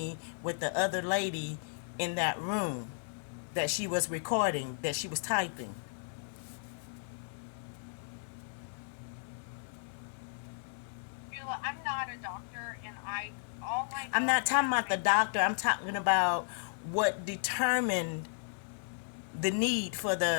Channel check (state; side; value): silent; right; 55 dB below the other